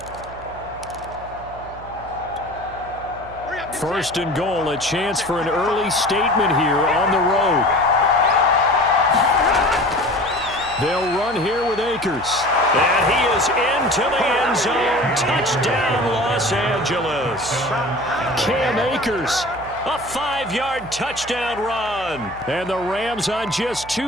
First and goal, a chance for an early statement here on the road. They'll run here with Akers. And he is into the end zone. Touchdown, Los Angeles. Cam Akers, a 5-yard touchdown run. And the Rams on just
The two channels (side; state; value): right; noise; hum, 17 dB below the sound